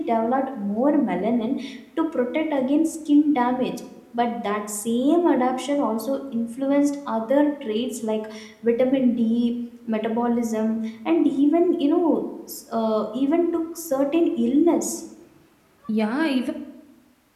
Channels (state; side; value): identical; both; correlation 1.00